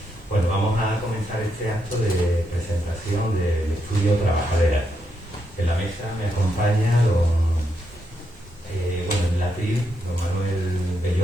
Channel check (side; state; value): both; normal; correlation 0.81